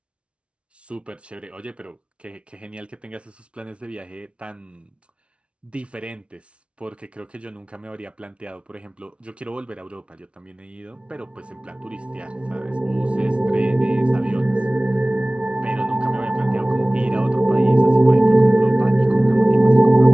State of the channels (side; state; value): left; late; 0.060 ms